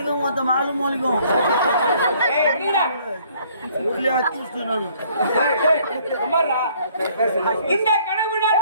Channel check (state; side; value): inverted; both; correlation -0.61